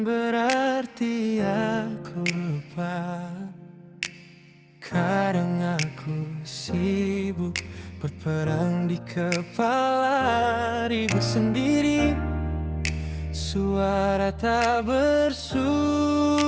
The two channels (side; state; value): both; identical; correlation 1.00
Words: berarti aku lupa. Kadang aku sibuk berperang di kepala, ribut sendiri, suara tak bersuara.